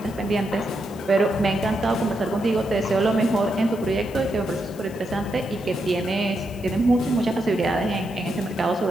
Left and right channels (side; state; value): left; noise; hiss, 22 dB below the sound